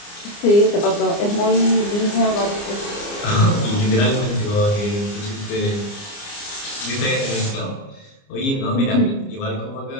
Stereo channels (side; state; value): right; late; 29 ms